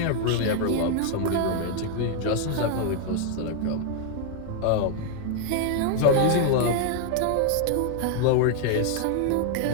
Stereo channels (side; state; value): both; different; correlation 0.00